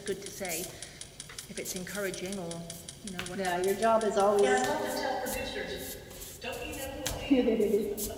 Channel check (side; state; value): both; identical; correlation 1.00